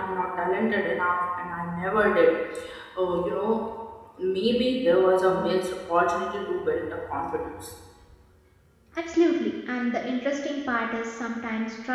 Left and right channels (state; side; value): identical; both; correlation 1.00